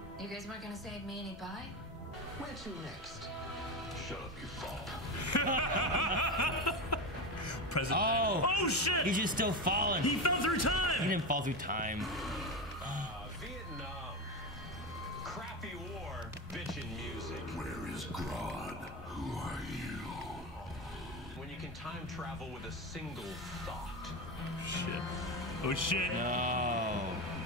You guys weren't gonna save me any pie? Where to next? Shut up, you fall. President. Oh Shit! He's just still falling. He fell through He time! didn't fall through time. Vietnam. Crappy war, bitchin' music. Where is Grodd? Who are you? When you can time travel with a single thought. Shit. Oh shit.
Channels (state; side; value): normal; both; correlation 0.19